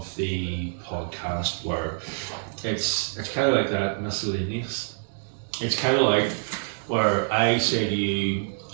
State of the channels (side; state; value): left; silent; digital silence